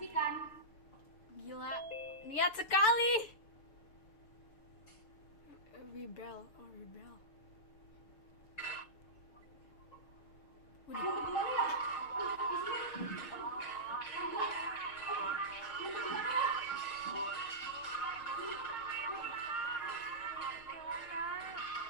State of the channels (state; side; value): late; right; 6.9 ms